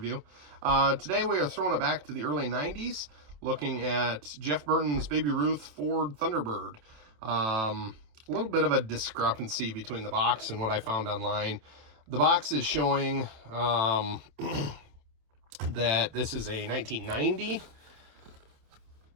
Today we are throwing it back to the early 90s, looking at Jeff Burton's Baby Ruth Ford Thunderbird. A little bit of a discrepancy between the box and what I found online. The box is showing that this is a 1990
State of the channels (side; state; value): left; late; 27 ms